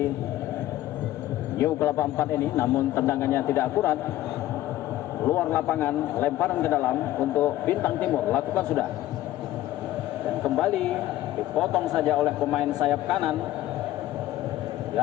New Kelapa 4 ini, namun tendangannya tidak akurat, luar lapangan, lemparan ke dalam untuk Bintang Timur, lakukan sudah, dan kembali dipotong saja oleh pemain sayap kanan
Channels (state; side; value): quieter; right; 14.8 dB